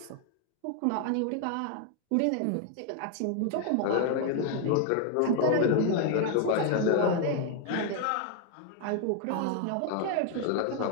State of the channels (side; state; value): both; different; correlation 0.00